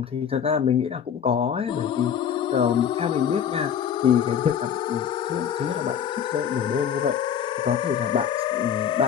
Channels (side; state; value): right; quieter; 8.4 dB